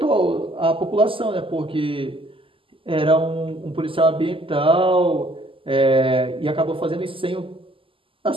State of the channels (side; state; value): left; late; 0.25 ms